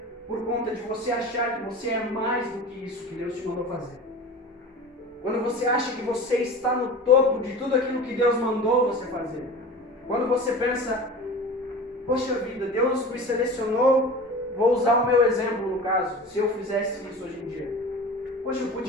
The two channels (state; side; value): normal; both; correlation 0.36